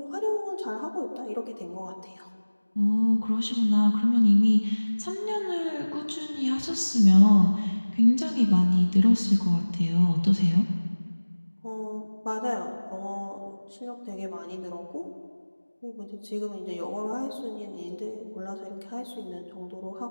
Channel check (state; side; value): inverted; both; correlation -1.00